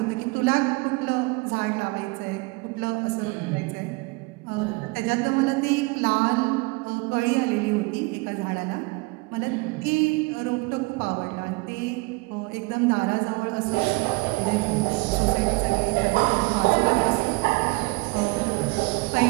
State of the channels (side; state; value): left; quieter; 26.0 dB